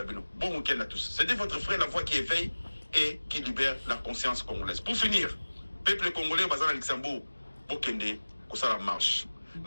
week-end à tous. C'était votre frère, la voix qui éveille et qui libère la conscience congolaise. Pour finir, peuple congolais, basé à Luxembourg, pour Kende. Ça la marche.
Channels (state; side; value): inverted; both; correlation -1.00